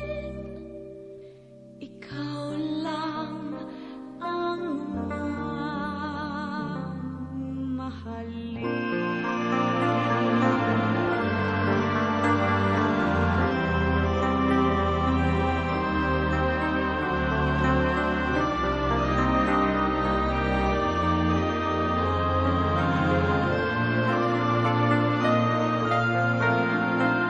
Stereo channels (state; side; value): identical; both; correlation 1.00